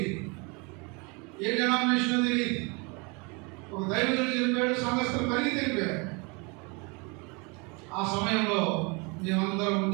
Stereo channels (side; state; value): left; quieter; 30.2 dB